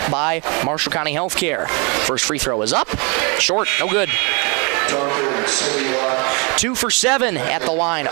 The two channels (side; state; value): left; quieter; 32.4 dB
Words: by Marshall County Healthcare. First free throw is up, short, no good. 2 for 7 at the line